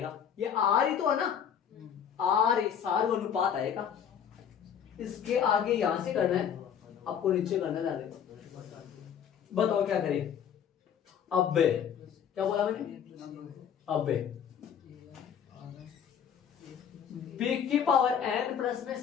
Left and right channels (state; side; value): quieter; right; 8.3 dB